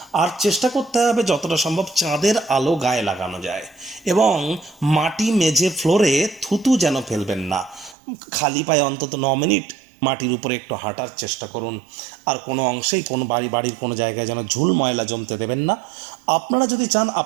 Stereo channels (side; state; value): left; drops out; at 8.0 s